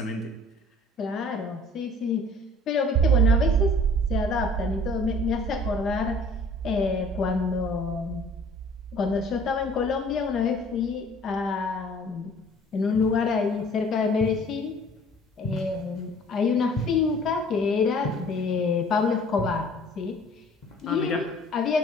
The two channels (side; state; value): both; normal; correlation 0.52